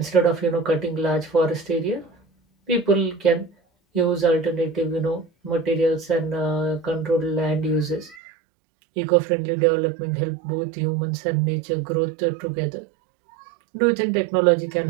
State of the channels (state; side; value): drops out; left; at 8.2 s